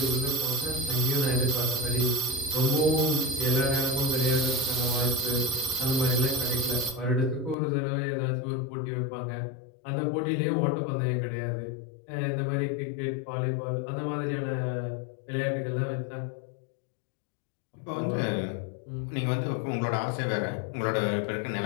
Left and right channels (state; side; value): drops out; right; at 7.6 s